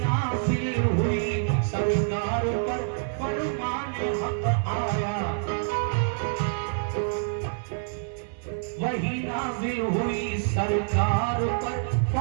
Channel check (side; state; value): left; silent; 60 dB below the other